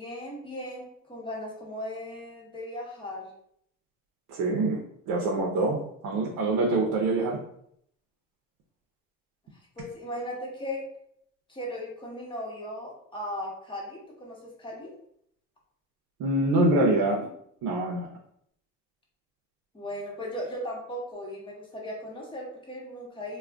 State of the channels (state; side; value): normal; both; correlation 0.11